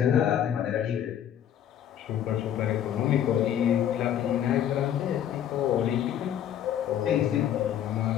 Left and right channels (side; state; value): right; quieter; 10.1 dB